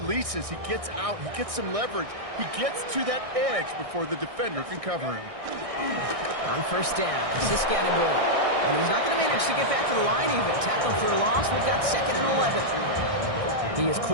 he gets out, he gets some leverage. He gets to that edge before the defender can cover him. On 1st down, Scatterboo. And he's not going to manage to get back to the line even. Tackle for a loss. We've got 2nd and 11. He is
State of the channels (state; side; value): late; left; 1.6 ms